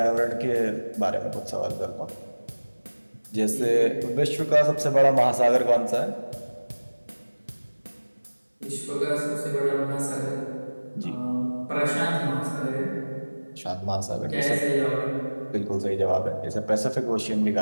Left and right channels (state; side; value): inverted; both; correlation -1.00